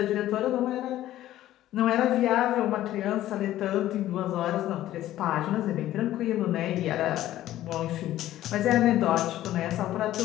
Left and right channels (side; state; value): right; quieter; 13.8 dB